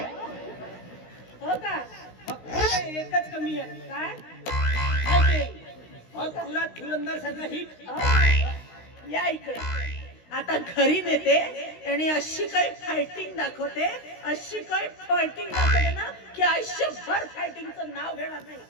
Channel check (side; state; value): right; late; 16 ms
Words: हो का? फक्त एकच कमी आहे. काय? तुला धुरंधर सारखा हिट. या इकडे. आता घरी नेते आणि अशी काही फायटिंग दाखवते, अशी काही फायटिंग दाखवते ना की आयुष्यभर फायटिंगचं नाव घेणार नाही.